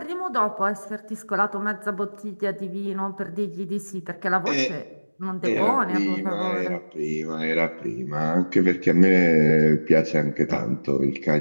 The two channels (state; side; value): inverted; both; correlation -1.00